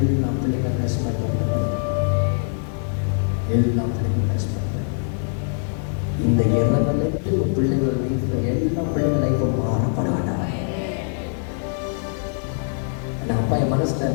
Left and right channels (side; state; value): right; silent; 64 dB below the other